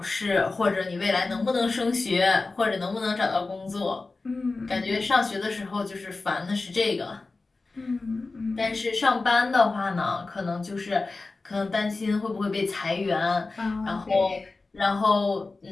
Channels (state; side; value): quieter; right; 3.6 dB